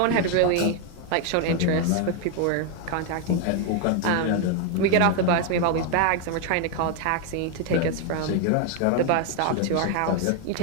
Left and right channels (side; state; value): both; different; correlation 0.01